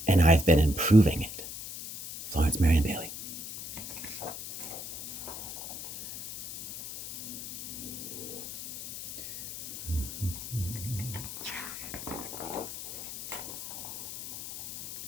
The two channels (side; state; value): left; noise; hiss, 9 dB below the sound